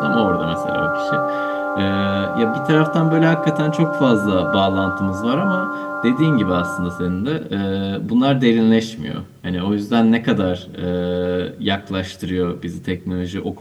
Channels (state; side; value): identical; both; correlation 1.00